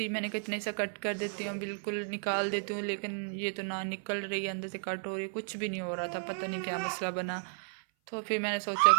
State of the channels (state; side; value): silent; left; 55 dB below the other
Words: मैंने कहा इतने सा कट कर देती हूँ, बिल्कुल निकाल देती हूँ, लेकिन ये तो ना निकल रही है, अंदर से कट हो रही है, कुछ भी नहीं हो रहा था। पता नहीं क्या मसला बना। तो फिर मैंने सोचा